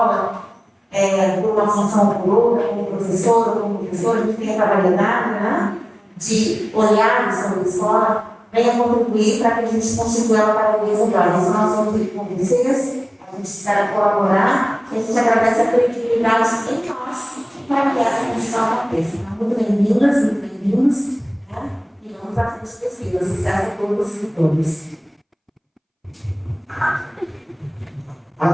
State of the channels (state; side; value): identical; both; correlation 1.00